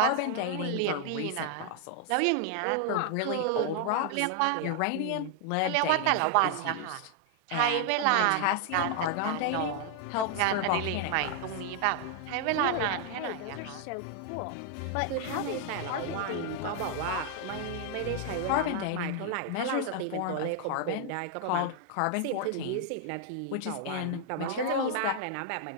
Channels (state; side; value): different; both; correlation 0.00